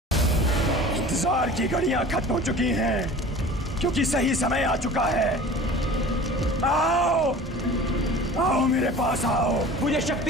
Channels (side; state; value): both; normal; correlation 0.41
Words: इंतजार की घड़ियां खत्म हो चुकी हैं क्योंकि सही समय आ चुका है। आओ आओ मेरे पास आओ, मुझे